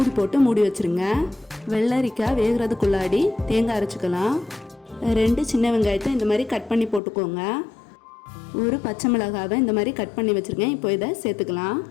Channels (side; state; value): right; drops out; at 7.0 s